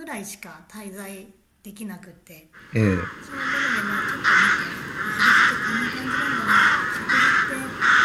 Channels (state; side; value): identical; both; correlation 1.00